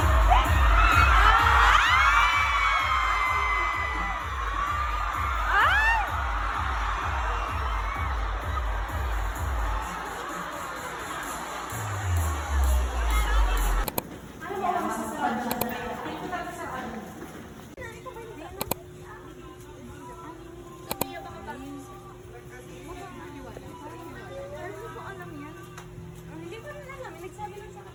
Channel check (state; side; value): identical; both; correlation 1.00